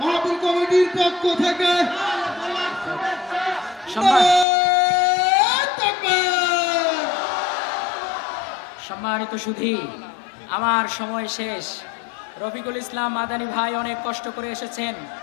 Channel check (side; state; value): right; drops out; at 4.5 s